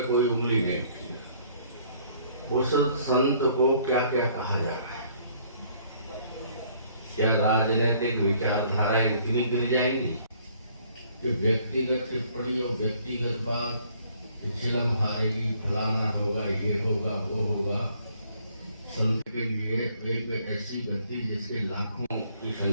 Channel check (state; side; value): inverted; both; correlation -0.62